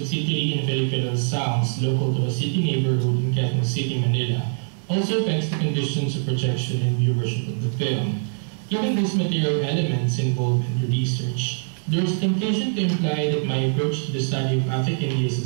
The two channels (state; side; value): silent; left; digital silence